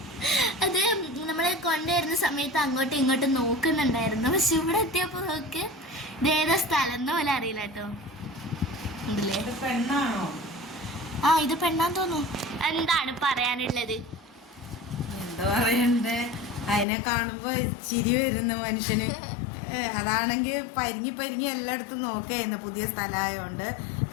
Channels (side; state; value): right; drops out; at 16.9 s